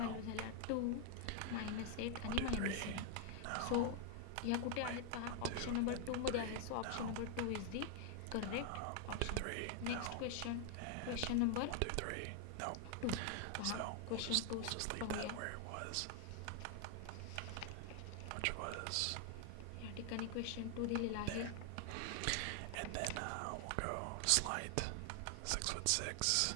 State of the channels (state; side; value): different; both; correlation 0.00